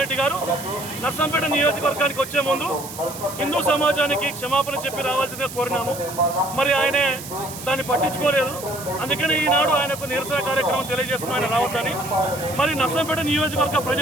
రెడ్డి గారు నర్సంపేట నియోజకవర్గానికి వచ్చే ముందు హిందూ సమాజానికి క్షమాపణ చెప్పి రావాల్సిందిగా కోరినాము. మరి ఆయనే దాన్ని పట్టించుకోలేదు. అందుకని ఈనాడు ఆయనకు నిరసన కార్యక్రమం తెలియజేస్తున్నాం ఆయన రావద్దని. మరి నర్సంపేట నియోజకవర్గ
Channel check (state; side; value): noise; right; hiss, 12 dB below the sound